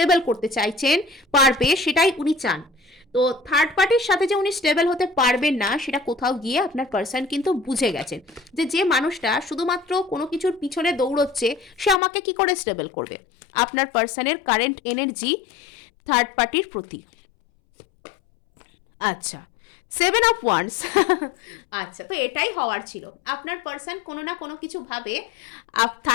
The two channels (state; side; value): drops out; right; at 12.0 s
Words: করতে চাইছেন পারবে, সেটাই উনি চান। তো থার্ড পার্টির সাথে যে উনি স্টেবল হতে পারবেন না, সেটা কোথাও গিয়ে আপনার পার্সন কিন্তু বুঝে গেছেন যে যে মানুষটা শুধুমাত্র কোনো কিছুর পিছনে দৌড়চ্ছে, সে আমাকে কি করে স্টেবল করবে। আপনার পার্সনের কারেন্ট এনার্জি থার্ড পার্টির প্রতি। আচ্ছা, 7 অফ ওয়ান্স। আচ্ছা, তো এটাই হওয়ার ছিল। আপনার পার্সন কোনো না কোনো কিছু ভাবে